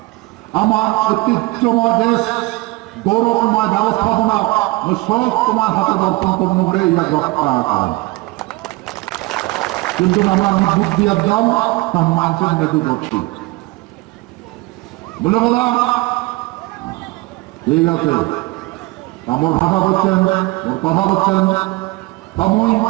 আমার ঐতিহ্যময় দেশ গৌরবময় ব্যবস্থাপনা সব তোমার হাতে দর্পণ করে ইয়া রক্ষা করেন। কিন্তু আমরা আমি বুদ্ধি একদম তার মানছেন দেখু করছি বলে বলা ঠিক আছে। আমার ভাষা বলছেন, কথা বলছেন, তমই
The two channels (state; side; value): quieter; left; 22.0 dB